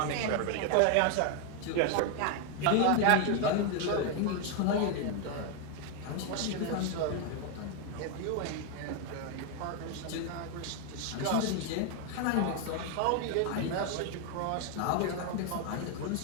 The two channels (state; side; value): different; both; correlation 0.01